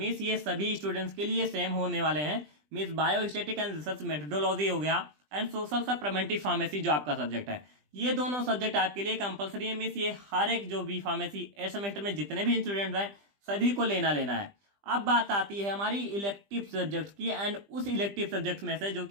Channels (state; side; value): late; left; 20 ms